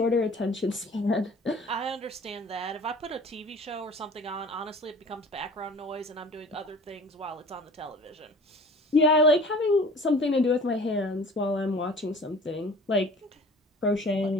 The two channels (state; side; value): normal; both; correlation 0.45